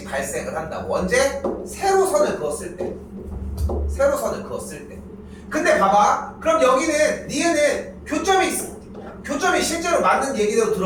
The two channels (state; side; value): identical; both; correlation 1.00